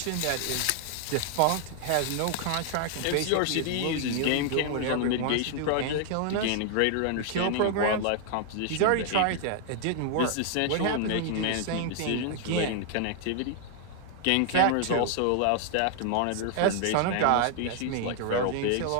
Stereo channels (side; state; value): both; different; correlation 0.00